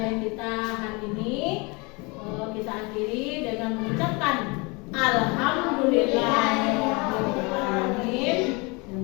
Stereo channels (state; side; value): quieter; right; 28.3 dB